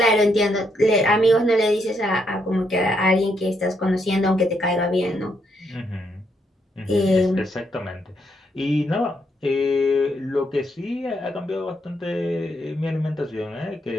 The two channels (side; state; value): both; normal; correlation 0.76